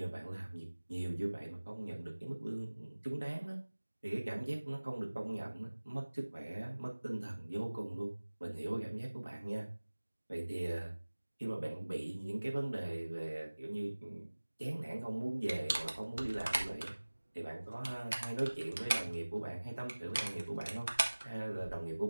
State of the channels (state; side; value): inverted; both; correlation -1.00